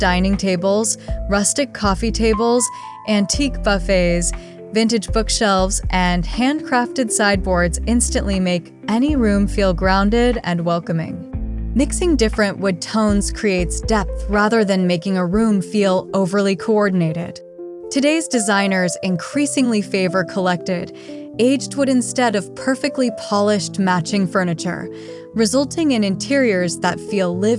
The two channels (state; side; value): identical; both; correlation 1.00